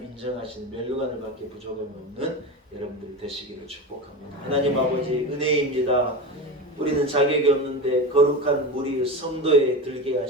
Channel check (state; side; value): normal; both; correlation 0.24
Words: 인정하시는 멸류관을 밖에 부족함이 없는 여러분들이 되시기를 축복합니다. 하나님 아버지 은혜입니다. 우리는 자격이 없는데 거룩한 무리 성도에 들게